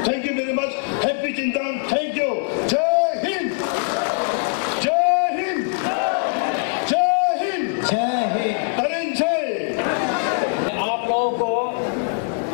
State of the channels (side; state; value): right; silent; digital silence